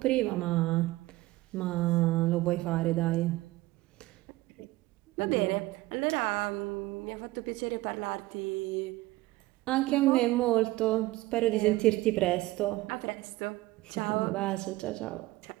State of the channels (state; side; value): quieter; left; 18.8 dB